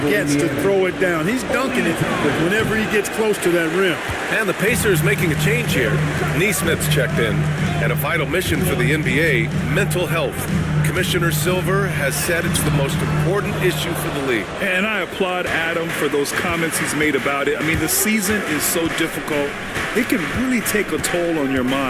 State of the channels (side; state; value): both; identical; correlation 1.00